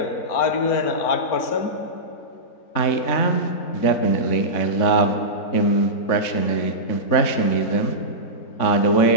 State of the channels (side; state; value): right; late; 3.6 ms